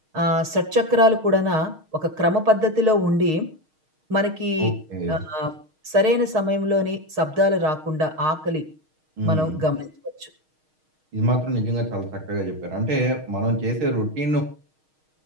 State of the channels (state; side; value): late; left; 6.4 ms